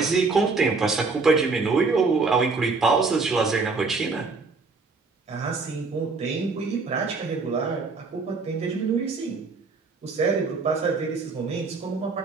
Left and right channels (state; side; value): quieter; left; 4.2 dB